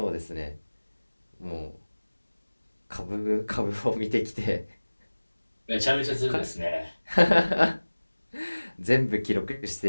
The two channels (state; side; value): inverted; both; correlation -1.00